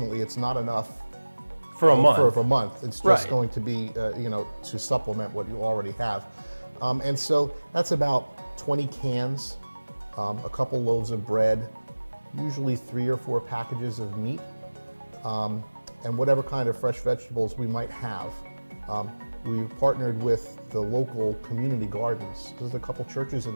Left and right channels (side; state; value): both; inverted; correlation -1.00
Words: it's not enough for a month. For a month. It's just going to be, to supplement what you already have. And so that's about 20 cans, a couple loaves of bread, usually 3 or 4 packages of meat, and whatever kind of fresh vegetables we might have. We've partnered with the local community gardens. There's a couple churches